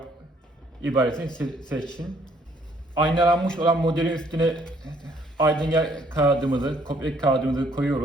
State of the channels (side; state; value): both; normal; correlation 0.65